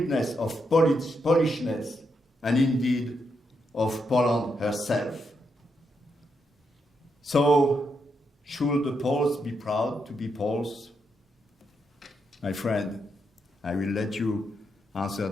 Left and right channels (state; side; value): normal; both; correlation 0.81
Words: of Polishness and indeed of Poland herself. So, should the Poles be proud to be Poles? My friend, I will let you answer